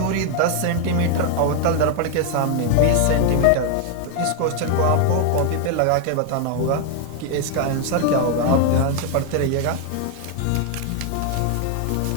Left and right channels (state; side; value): different; both; correlation 0.00